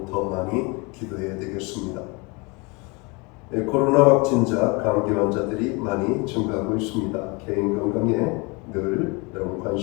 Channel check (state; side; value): quieter; right; 27.5 dB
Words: 더 많이 기도해야 되겠습니다. 코로나 확진자, 감기 환자들이 많이 증가하고 있습니다. 개인 건강에 늘 여러분